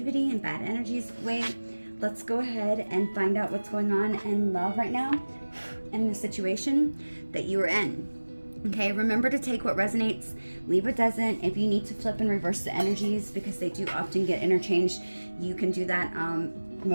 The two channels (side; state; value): both; inverted; correlation -1.00